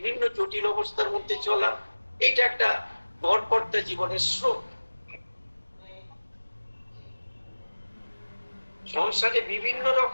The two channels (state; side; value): inverted; both; correlation -1.00